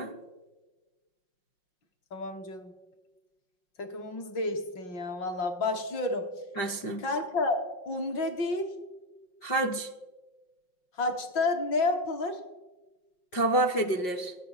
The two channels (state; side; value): late; right; 5.6 ms